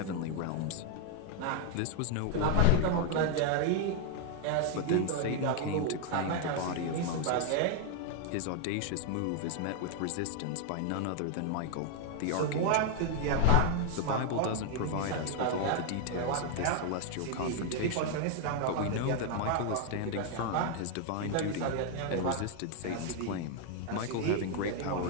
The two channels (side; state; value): both; different; correlation 0.00